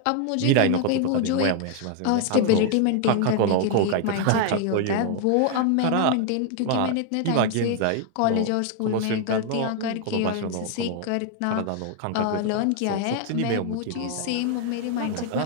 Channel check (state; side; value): different; both; correlation 0.00